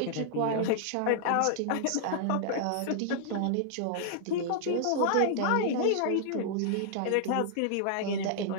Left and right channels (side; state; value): both; different; correlation -0.01